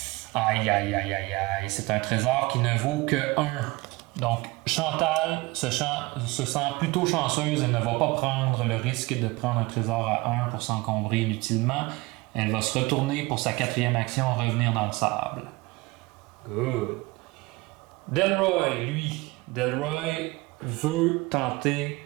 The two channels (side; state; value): left; quieter; 22.8 dB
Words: Aïe, aïe, aïe, aïe, aïe. C'est un trésor qui ne vaut que 1. Donc, Chantal se sent plutôt chanceuse. Elle ne va pas prendre le risque de prendre un trésor à 1 pour s'encombrer inutilement. Elle va se retourner pour sa 4e action, revenir dans le sable. Good. Delroy, lui, veut tenter